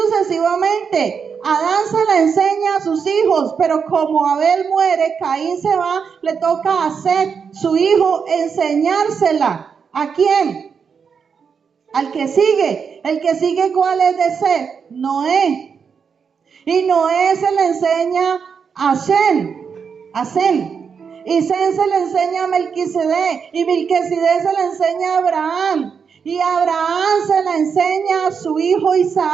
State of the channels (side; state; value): left; quieter; 6.3 dB